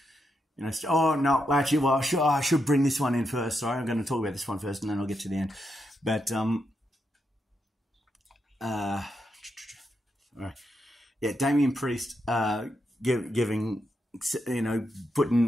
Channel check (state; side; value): normal; both; correlation 0.83